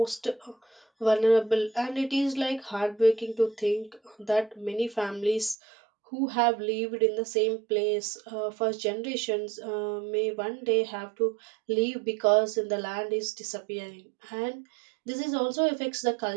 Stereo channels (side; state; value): left; drops out; at 5.6 s